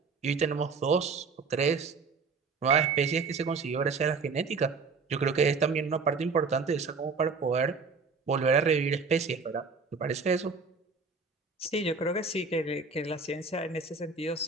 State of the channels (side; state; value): left; quieter; 4.7 dB